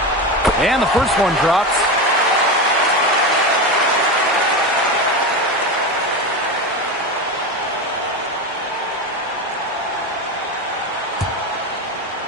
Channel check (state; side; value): normal; both; correlation 0.20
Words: And the first one drops.